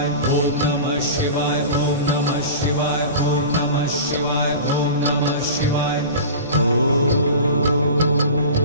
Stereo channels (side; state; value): both; inverted; correlation -0.34